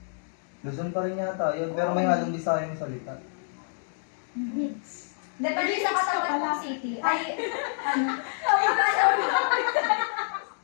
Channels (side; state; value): right; silent; digital silence